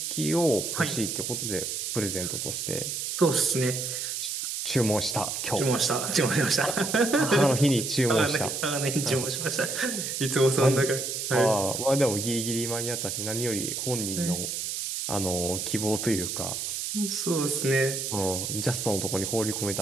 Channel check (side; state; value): right; noise; hiss, 3 dB below the sound